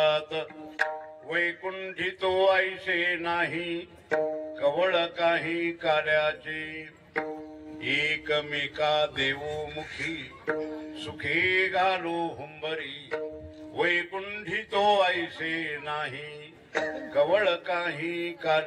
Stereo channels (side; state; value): both; identical; correlation 1.00